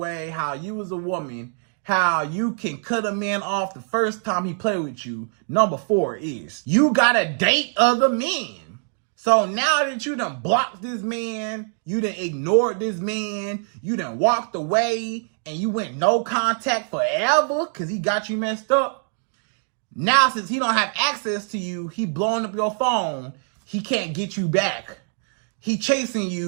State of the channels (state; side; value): silent; left; 56 dB below the other